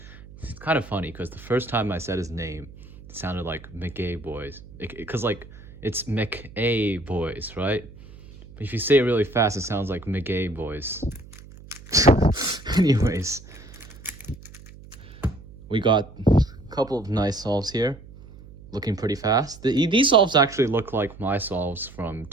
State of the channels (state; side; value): noise; right; hum, 19 dB below the sound